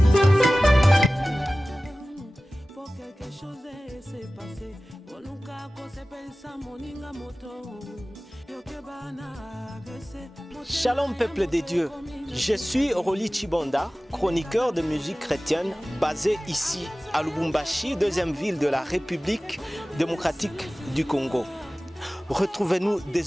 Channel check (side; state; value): both; normal; correlation 0.97